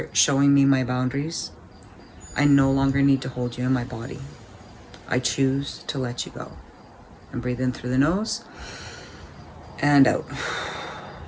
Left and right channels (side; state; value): both; identical; correlation 1.00